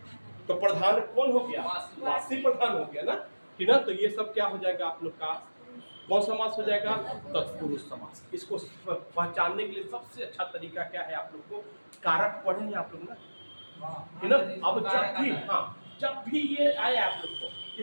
तो प्रधान कौन हो गया? वासी प्रधान हो गया ना, कि ना। तो ये सब क्या हो जाएगा आप लोग का? कौन समास हो जाएगा? तत्पुरुष समास। इसको पहचानने के लिए सबसे अच्छा तरीका क्या है? आप लोग को कारक पढ़ेंगे आप लोग ना, है ना। अब जब भी ये आए आप लोग को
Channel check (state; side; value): inverted; both; correlation -1.00